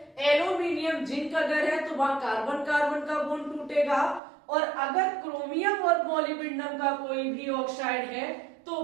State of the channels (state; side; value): drops out; left; at 4.2 s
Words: एल्यूमिनियम जिंक अगर है तो वहां कार्बन कार्बन का बॉन्ड टूटेगा, और अगर क्रोमियम और मोलिब्डेनम का कोई भी ऑक्साइड है तो